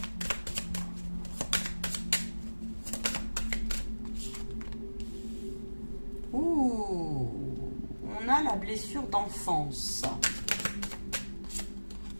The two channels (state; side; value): inverted; both; correlation -1.00